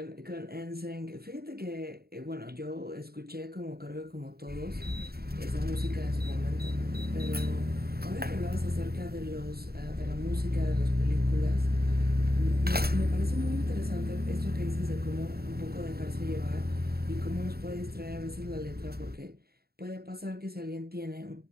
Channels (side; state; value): left; late; 0.45 ms